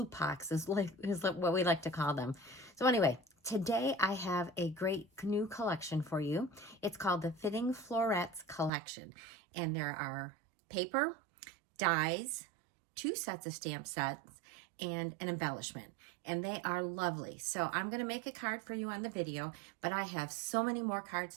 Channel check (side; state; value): left; drops out; at 8.7 s